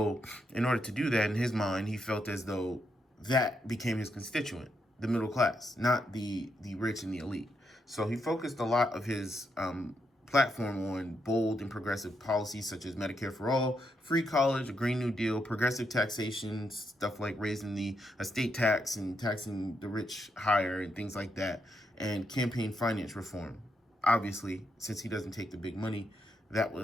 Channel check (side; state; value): both; normal; correlation 0.80